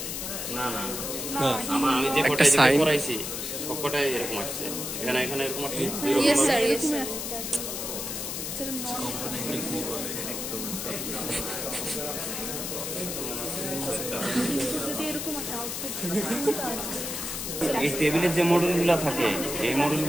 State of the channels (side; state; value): left; noise; hiss, 4 dB below the sound